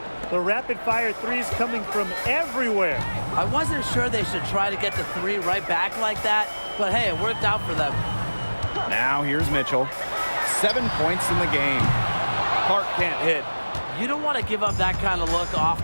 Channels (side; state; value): both; inverted; correlation -1.00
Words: The rapid-fire threes coming from everywhere. I wasn't sure they should try to get the 3 right back like that, but hey, it worked out for them. Now here's Mitchell. 7 points in the game. Clark can't hit. You don't want to give up that kind of look